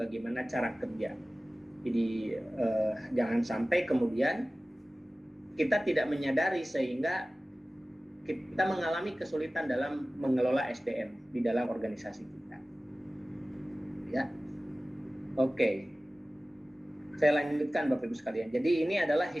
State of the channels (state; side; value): normal; both; correlation 0.97